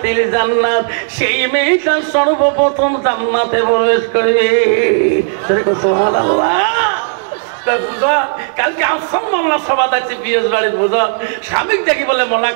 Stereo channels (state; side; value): silent; left; digital silence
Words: জান্নাত, সেই মেয়েটা সর্বপ্রথম জান্নাতে প্রবেশ করবে। সুবহানাল্লাহ। কালকে আফসার মোল্লা সভা আছে পিএস বাড়ির বুঝল। স্বামী দেখি বলে